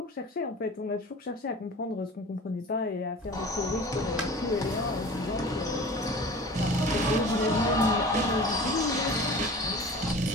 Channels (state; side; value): normal; both; correlation 0.40